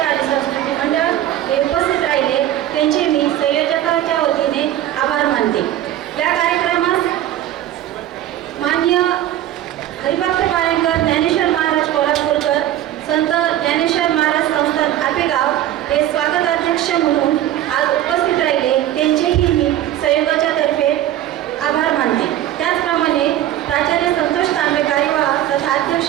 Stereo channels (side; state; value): left; quieter; 12.7 dB